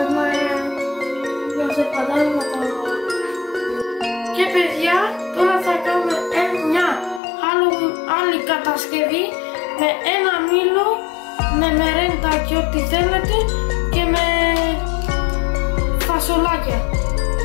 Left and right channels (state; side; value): drops out; right; at 7.2 s